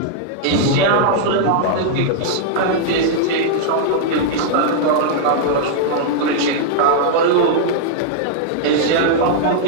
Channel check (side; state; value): both; different; correlation -0.01